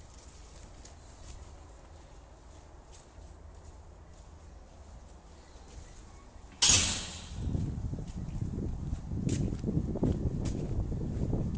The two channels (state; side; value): identical; both; correlation 1.00